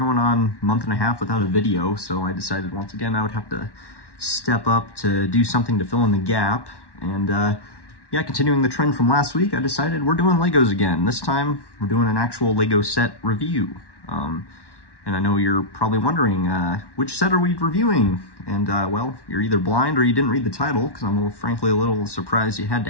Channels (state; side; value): late; right; 1.1 ms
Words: on a month and a half without a video, so I decided once again I would have to step up to do something to fill in the gap. And yeah, continuing the trend from last week, I decided we're doing Legos again. This time, we're doing an actual Lego set review. And I know you're probably wondering, which set are we reviewing? And, well, you're either blind or you didn't read the title, because I'm frankly a little surprised you had